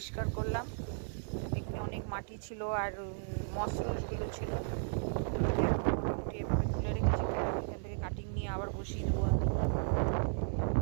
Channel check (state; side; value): silent; left; 55 dB below the other